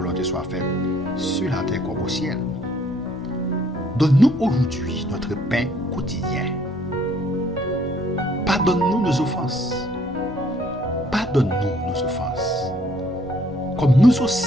soit faite sur la terre comme au ciel. Donne-nous aujourd'hui notre pain quotidien. Pardonne-nous nos offenses. Pardonne-nous nos offenses. Comme nous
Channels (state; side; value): normal; both; correlation 0.62